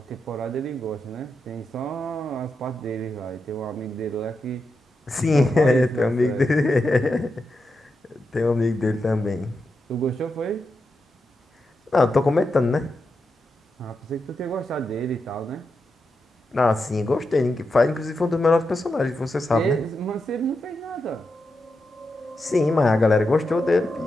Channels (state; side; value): normal; both; correlation 0.87